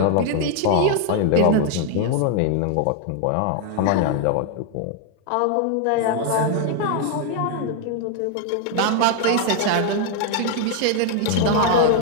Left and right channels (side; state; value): both; different; correlation 0.00